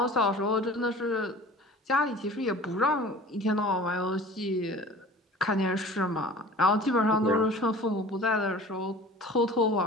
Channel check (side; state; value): both; normal; correlation 0.42